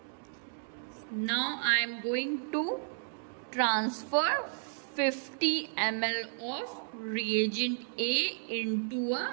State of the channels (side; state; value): left; silent; digital silence